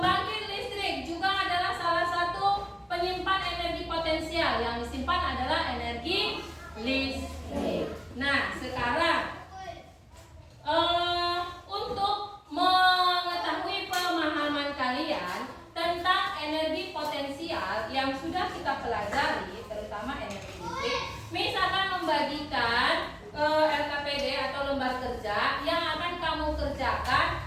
listrik juga adalah salah satu penyimpan energi potensial. Yang disimpan adalah energi listrik. Nah, sekarang untuk mengetahui pemahaman kalian tentang energi potensial yang sudah kita pelajari, terutama energi listrik, misalkan membagikan LKPD atau lembar kerja yang akan kamu kerjakan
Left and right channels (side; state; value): both; identical; correlation 1.00